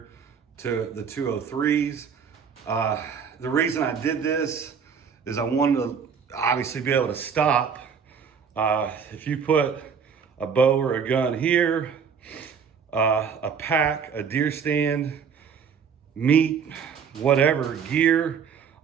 to the 203s. The reason I did this is I wanted to obviously be able to stop. If you put a bow or a gun here, a pack, a deer stand, meat, whatever, gear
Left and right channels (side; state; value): left; quieter; 6.6 dB